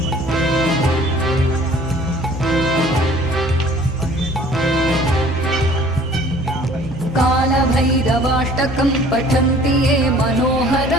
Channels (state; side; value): normal; both; correlation 0.52